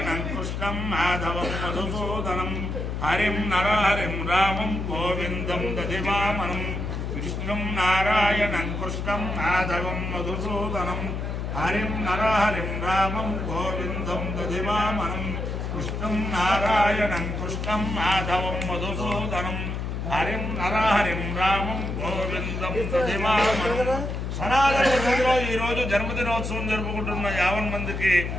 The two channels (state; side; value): noise; left; hum, 3 dB below the sound